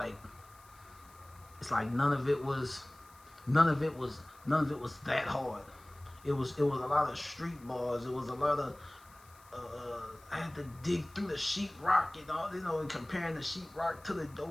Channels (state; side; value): noise; left; hiss, 26 dB below the sound